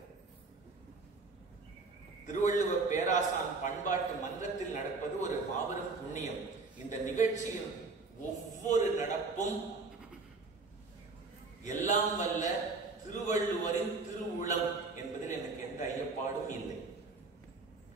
திருவள்ளுவர் பேராசான் பண்பாட்டு மன்றத்தில் நடப்பது ஒரு மாபெரும் புண்ணியம். இந்த நிகழ்ச்சியில் ஒவ்வொரு நடப்பும் எல்லாம் வல்ல திருவள்ளுவரின் திருவுளம் என்பதில் எனக்கு எந்த ஐயப்பாடும் இல்லை.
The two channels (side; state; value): left; quieter; 3.9 dB